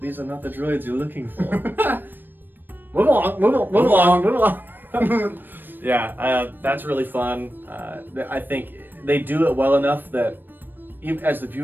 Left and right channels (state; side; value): late; left; 0.093 ms